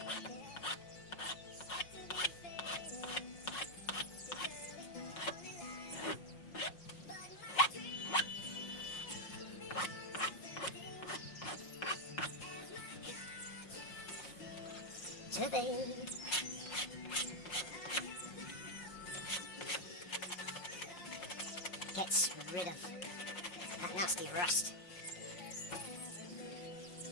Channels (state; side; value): late; right; 5.5 ms